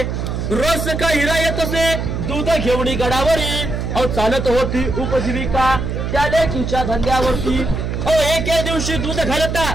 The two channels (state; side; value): noise; right; hum, 3 dB below the sound